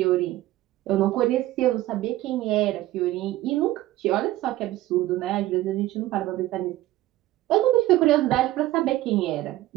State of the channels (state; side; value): quieter; left; 15.8 dB